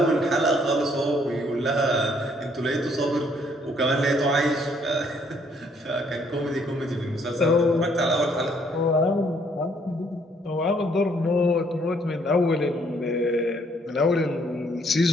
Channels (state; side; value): normal; both; correlation 0.66